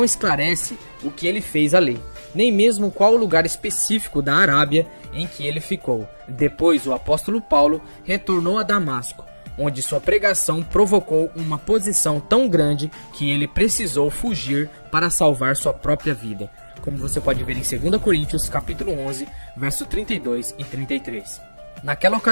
esclarece o que ele fez ali, nem mesmo qual o lugar específico da Arábia em que ele ficou. Depois o apóstolo Paulo retornou a Damasco, onde sua pregação provocou uma posição tão grande que ele precisou fugir para salvar sua própria vida, como você pode ver em 2 Coríntios capítulo 11, verso 32 e 33. Naquela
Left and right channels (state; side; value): inverted; both; correlation -1.00